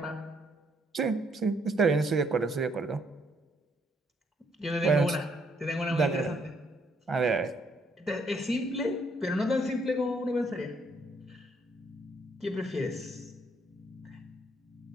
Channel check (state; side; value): normal; both; correlation 0.71